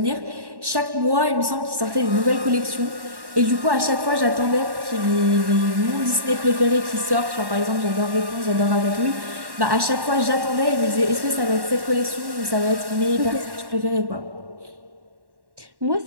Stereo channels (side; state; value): left; late; 1.1 ms